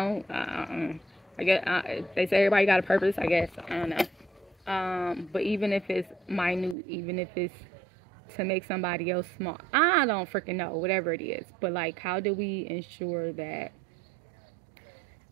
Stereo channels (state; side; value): drops out; left; at 6.8 s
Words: guess they say everybody got a purpose. I guess I don't know. But even if it's minute, even if it's to make somebody else small, I don't freaking know. Whatever it is, but like, how do we ensure that